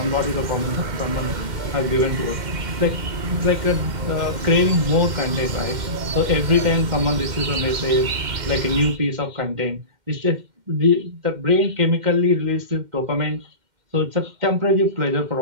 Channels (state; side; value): late; left; 2.1 ms